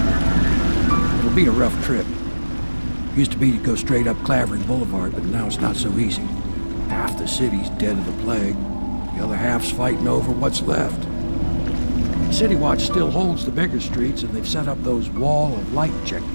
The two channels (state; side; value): inverted; both; correlation -1.00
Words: Be a rough trip. Used to be to go straight up Clavering Boulevard, but now it's not so easy. Half the city's dead of the plague. The other half's fighting over what's left. City Watch still holds the bigger streets, and they've set up those wall of light